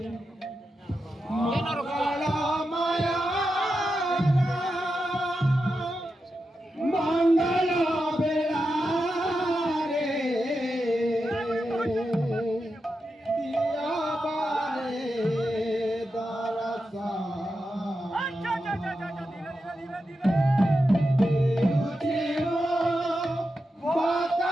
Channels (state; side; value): normal; both; correlation 0.89